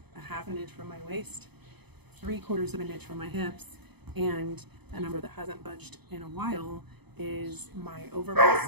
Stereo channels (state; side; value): late; left; 0.98 ms